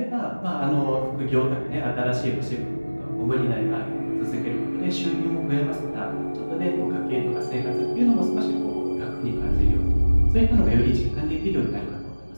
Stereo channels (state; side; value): inverted; both; correlation -1.00